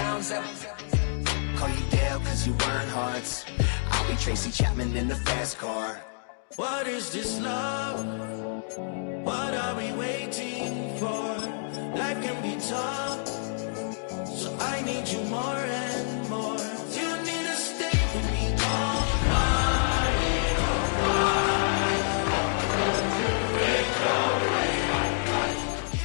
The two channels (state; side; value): silent; right; digital silence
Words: that... Call you Dale, cause you weren't hearts. I'll be Tracy Chapman in the fast car. What is this love? What are we waiting for? Life can be tough, so I need you more and more. You need to stay with me all night.